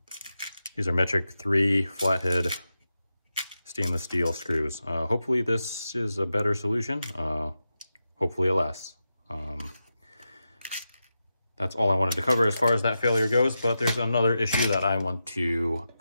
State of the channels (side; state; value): both; inverted; correlation -0.90